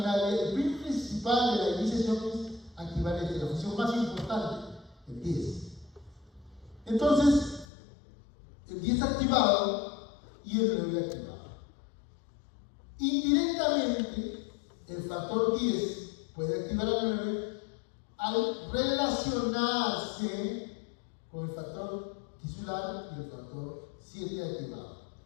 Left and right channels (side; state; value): right; drops out; at 7.7 s